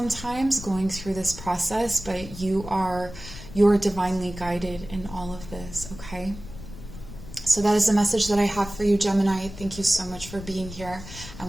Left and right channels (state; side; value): noise; left; rumble, 13 dB below the sound